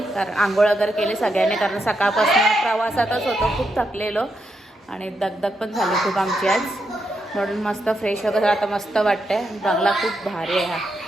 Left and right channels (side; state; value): both; normal; correlation 0.82